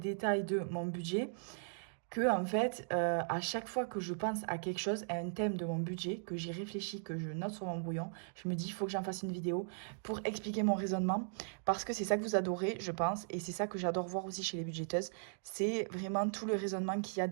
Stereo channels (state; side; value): silent; left; digital silence